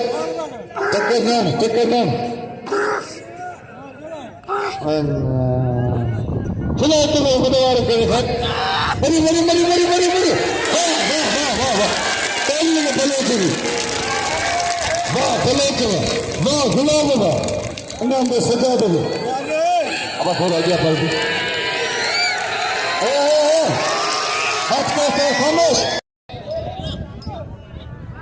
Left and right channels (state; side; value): identical; both; correlation 1.00